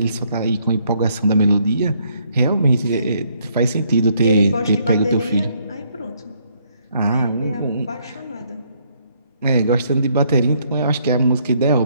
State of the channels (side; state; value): both; inverted; correlation -0.69